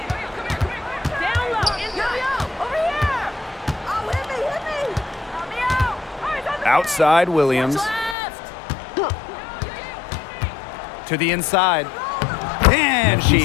low. Over here. Oh, hit me. Help me out. All right, Outside Williams. left. To the inside. And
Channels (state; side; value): drops out; right; at 8.2 s